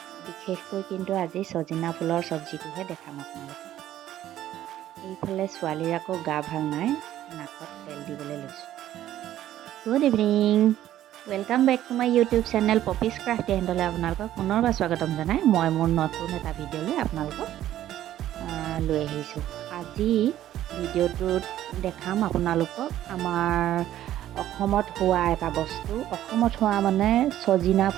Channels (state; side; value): quieter; left; 12.7 dB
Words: বিশেষকৈ কিন্তু আজি ছজিনা ফুলৰ চব্জিটোহে দেখাম আপোনালোকক। এইফালে ছোৱালীৰ আকৌ গা ভাল নাই, নাকত তেল দিবলৈ লৈছোঁ। Good evening, welcome back to my YouTube channel Poppy's Craft এণ্ডলৈ আপোনালোকক পুনৰবাৰ স্বাগতম জনাই মই মোৰ নতুন এটা ভিডিঅ'লৈ আপোনালোকক লৈ আহিছোঁ। আজি ভিডিঅ'টোত দেখাম আপোনালোকক আমাৰ অসমত হোৱা এটা বস্তু। অসমত হোৱা মানে ছজিনা